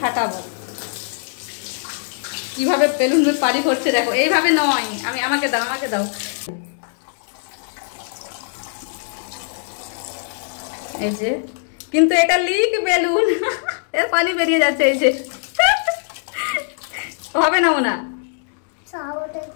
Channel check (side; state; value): right; silent; digital silence